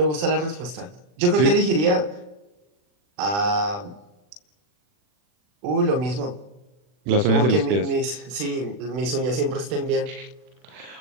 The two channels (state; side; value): late; left; 40 ms